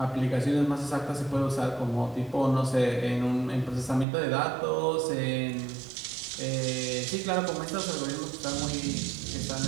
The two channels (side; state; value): left; drops out; at 4.0 s